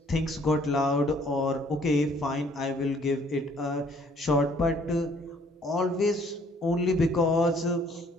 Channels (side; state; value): both; normal; correlation 0.61